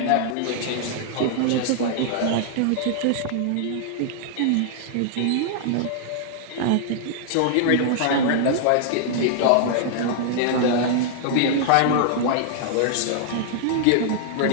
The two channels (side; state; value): both; different; correlation -0.01